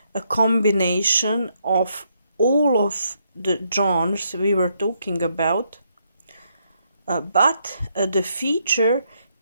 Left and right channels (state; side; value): inverted; both; correlation -0.76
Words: a combination of all of the genres we were talking about, but the feature